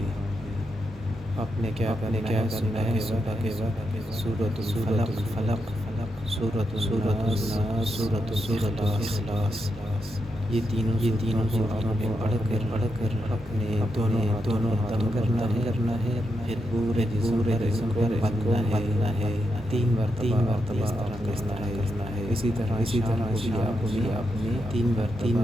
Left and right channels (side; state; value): both; normal; correlation 0.84